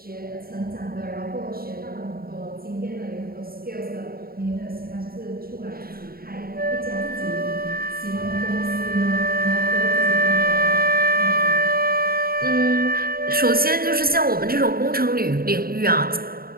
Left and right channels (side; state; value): left; late; 0.43 ms